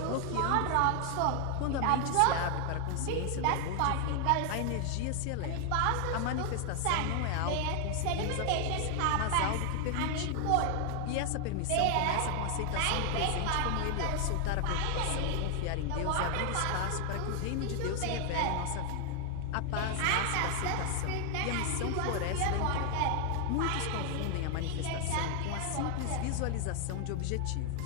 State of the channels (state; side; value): different; both; correlation 0.00